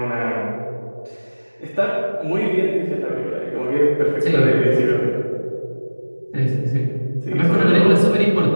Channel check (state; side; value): inverted; both; correlation -1.00